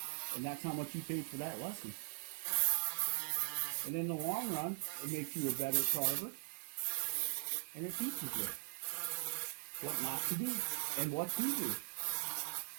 and that's how much you paid for that lesson. And in the long run, it makes you a better carver, and it teaches you what not to do and what to do.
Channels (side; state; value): left; silent; digital silence